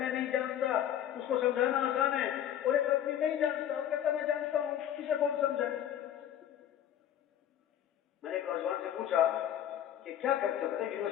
نہیں جانتا, اس کو سمجھانا آسان ہے. اور ایک آدمی نہیں جانتا اور کہتا میں جانتا ہوں, اسے کون سمجھائے؟ میں نے ایک نوجوان سے پوچھا کہ کیا کرتے ہو؟ کہتے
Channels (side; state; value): right; quieter; 10.6 dB